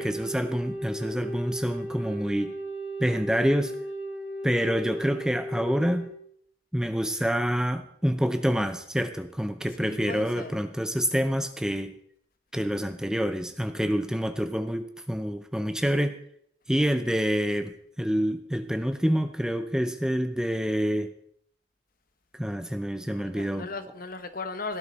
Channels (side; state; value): both; normal; correlation 0.92